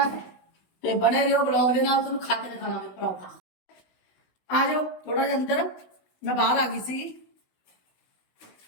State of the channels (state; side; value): late; right; 16 ms